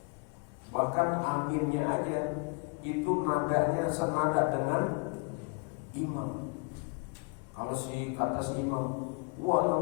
Bahkan aminnya aja itu nadanya senada dengan imam. Kalau kata si imam,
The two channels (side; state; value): right; quieter; 36.3 dB